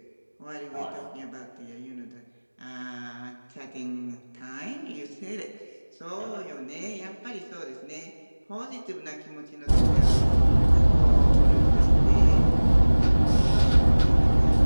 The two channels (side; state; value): both; inverted; correlation -1.00